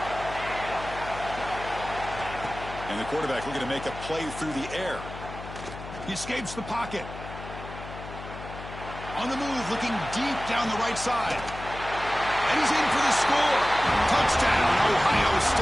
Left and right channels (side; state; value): left; noise; hum, 12 dB below the sound